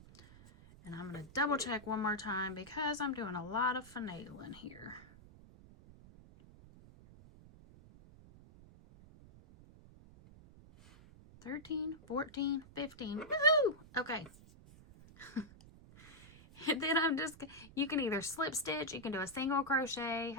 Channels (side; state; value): right; noise; rumble, 21 dB below the sound